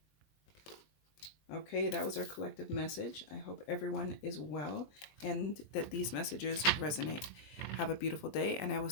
Okay, that was our collective message. I hope everyone is well and that these messages resonate. Have a beautiful day, and I will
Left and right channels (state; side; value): late; right; 20 ms